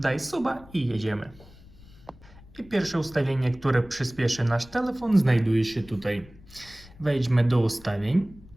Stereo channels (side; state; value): left; noise; rumble, 22 dB below the sound